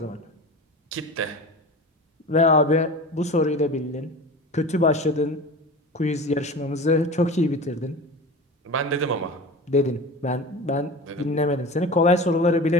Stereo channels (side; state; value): both; normal; correlation 0.32